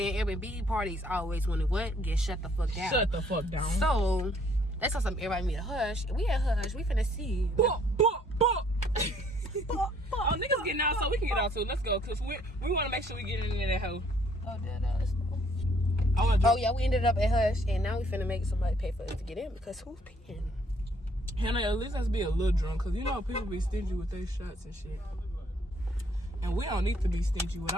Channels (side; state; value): both; normal; correlation 0.64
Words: Airbnb parties always want to what? Get shut the fuck down. Shut the fuck down. So that's how some everybody meet a hush. We at hush. We finna see. Oh, niggas getting out, so we can get out too. Let's go, cause we want to make sure we get in that hoe. Oh, let's go. Oh yeah, we ended up at hush, and now we finna make somebody pay for us to get in because who's paying? Hannah, at least let's be a little drunk, cause you know people be stingy with their shots and shit, and we don't need to be stingy with